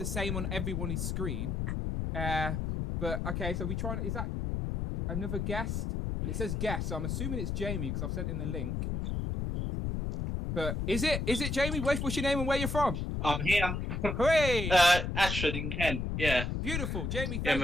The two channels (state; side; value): noise; left; rumble, 2 dB below the sound